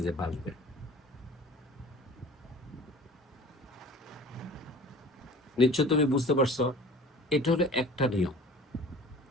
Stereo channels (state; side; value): normal; both; correlation 0.44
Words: যে ভাসবে। নিশ্চয় তুমি বুঝতে পারছো, এটা হলো একটা নিয়ম।